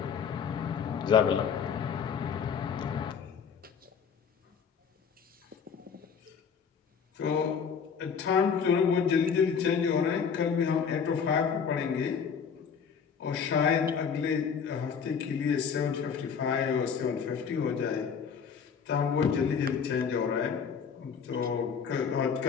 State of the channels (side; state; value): right; quieter; 6.6 dB